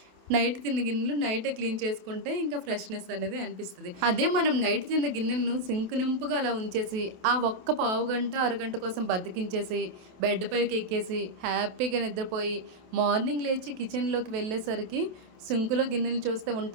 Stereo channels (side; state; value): left; late; 28 ms